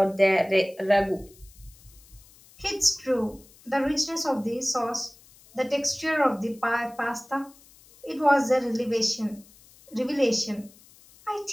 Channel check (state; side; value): noise; left; hiss, 26 dB below the sound